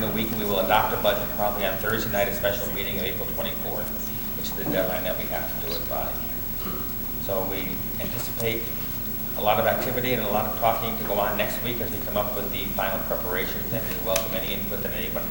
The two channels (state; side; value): identical; both; correlation 1.00